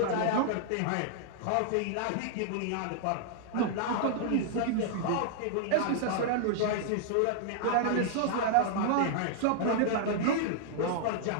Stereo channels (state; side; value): different; both; correlation -0.01